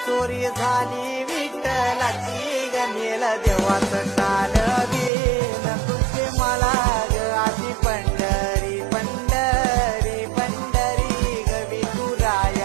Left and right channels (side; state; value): left; drops out; at 5.1 s